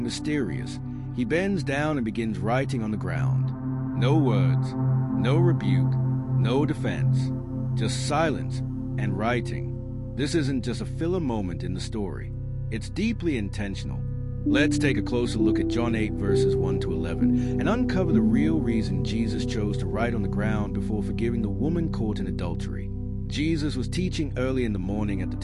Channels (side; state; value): both; identical; correlation 1.00